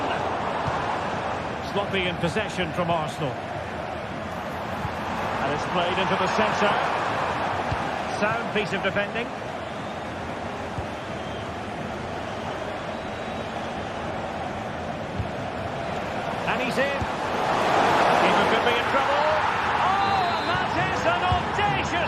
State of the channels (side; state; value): both; identical; correlation 1.00